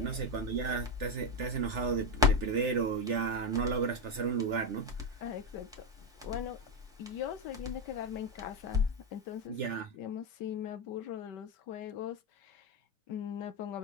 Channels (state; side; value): normal; both; correlation 0.10